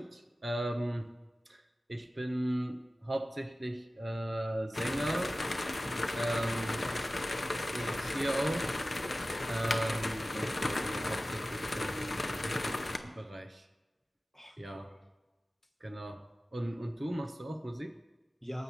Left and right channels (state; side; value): normal; both; correlation 0.96